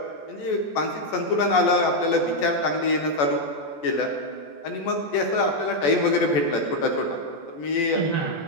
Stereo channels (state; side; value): late; right; 14 ms